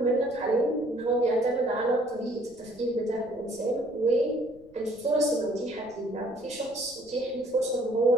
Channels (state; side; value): noise; left; rumble, 26 dB below the sound